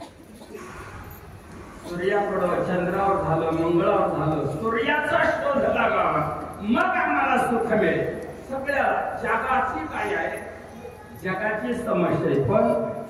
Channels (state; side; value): identical; both; correlation 1.00